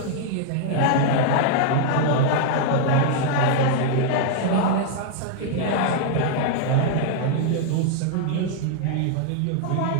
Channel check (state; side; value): different; both; correlation -0.01